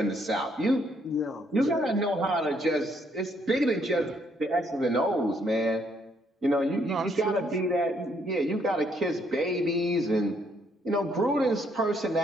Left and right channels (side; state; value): both; normal; correlation 0.70